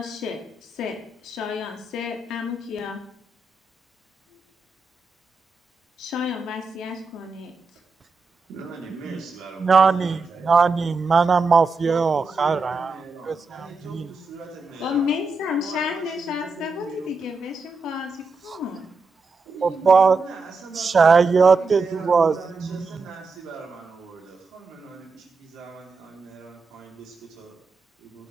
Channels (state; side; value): quieter; left; 3.8 dB